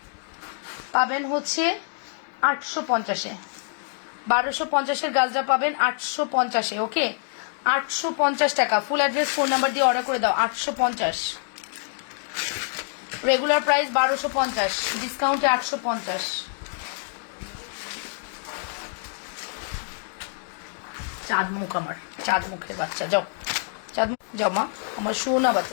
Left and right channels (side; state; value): right; silent; digital silence